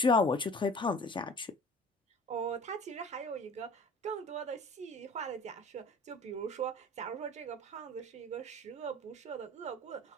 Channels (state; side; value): normal; both; correlation 0.44